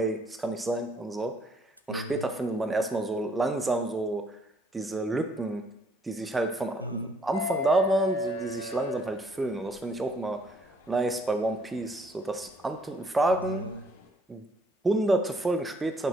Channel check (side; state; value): both; normal; correlation 0.65